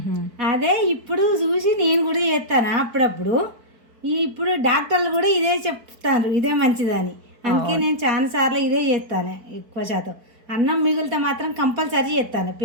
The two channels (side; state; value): left; late; 4.6 ms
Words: అదే ఇప్పుడు చూసి నేను కూడా చేస్తాను అప్పుడప్పుడు. ఇప్పుడు డాక్టర్లు కూడా ఇదే చెప్తారు, ఇదే మంచిదని. అందుకే నేను చాలా సార్లు ఇదే చేస్తాను. ఎక్కువ శాతం అన్నం మిగిలితే మాత్రం కంపల్సరీ చేస్తాను